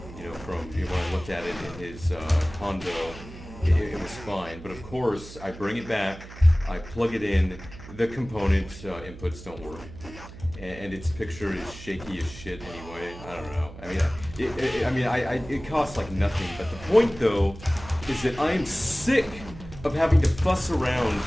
from when I looked at it in his condo, it was fine. But of course, I bring it back, I plug it in, the component inputs don't work. And its picture is shaky as shit anyway. I don't know. It costs like nothing. But the point, though, is that I am sick of having to fuss around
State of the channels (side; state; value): right; noise; hum, 15 dB below the sound